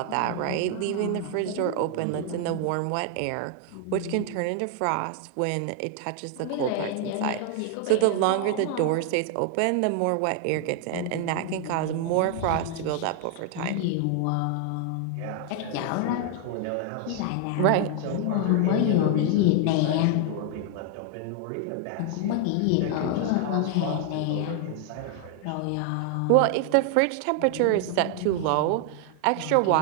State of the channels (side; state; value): both; different; correlation 0.00